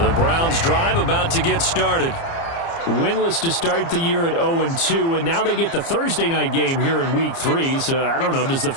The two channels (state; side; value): late; right; 30 ms